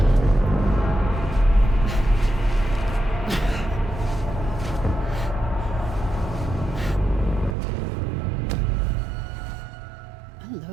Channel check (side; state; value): left; drops out; at 7.6 s